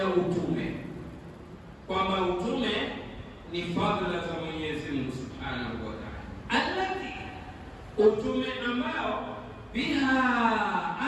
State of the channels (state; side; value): identical; both; correlation 1.00